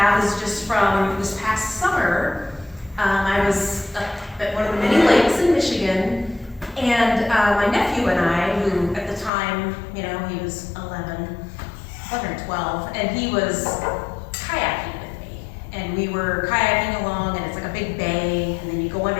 is just from this past summer. I was up at one of the many lakes in Michigan, and my nephew and I, who at the time, you know, he was 11 or 12, and he was kayaking with me. And we were kayaking along, and it's like a big bay, and then you go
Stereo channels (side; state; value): right; drops out; at 9.3 s